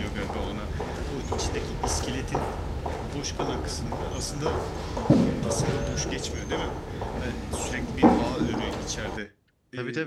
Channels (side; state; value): both; identical; correlation 1.00